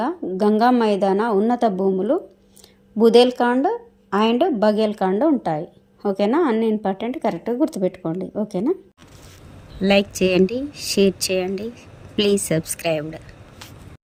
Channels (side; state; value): both; identical; correlation 1.00